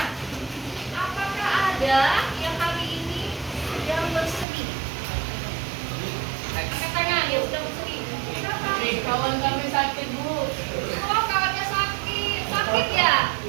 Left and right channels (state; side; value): drops out; left; at 4.5 s